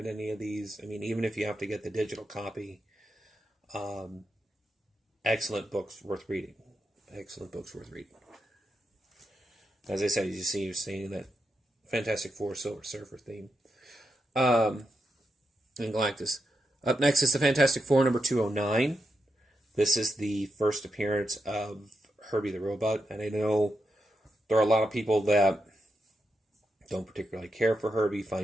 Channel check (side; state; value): both; normal; correlation 0.85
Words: any of these, I mean, even if you have to get the digital copy, excellent books worth reading. Excellent books worth reading. As I said, as you see, you're seeing that Fantastic Four Silver Surfer theme. And Galactus. Up next is the Fantastic Four number 209. This is the first appearance of Herbie the Robot, and I know there are a lot of people that don't particularly care for Herbie,